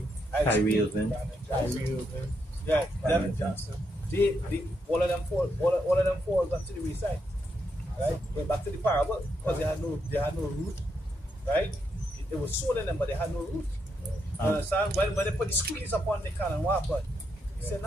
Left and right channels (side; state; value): both; normal; correlation 0.80